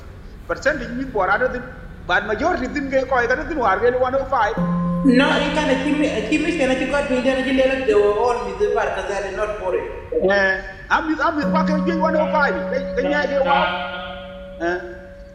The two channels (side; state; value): both; identical; correlation 1.00